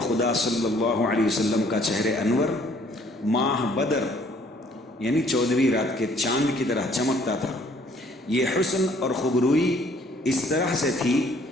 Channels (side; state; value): both; normal; correlation 0.60